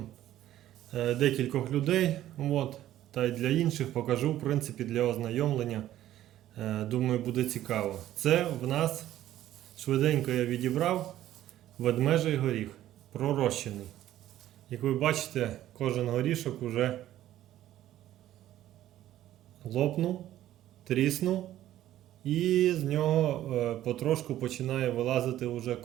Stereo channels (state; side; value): quieter; left; 13.1 dB